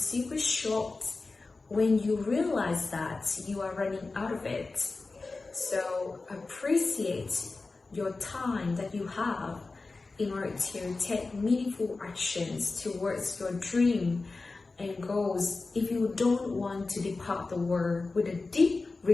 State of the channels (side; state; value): right; quieter; 3.7 dB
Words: short when you realize that you are running out of it. So appreciate your time that you have in order to take meaningful actions towards your dream and goals if you don't want to depart the world with a deep